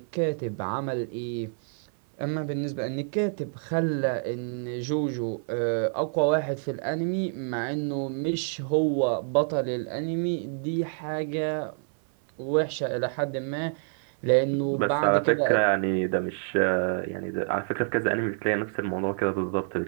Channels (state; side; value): silent; left; 56 dB below the other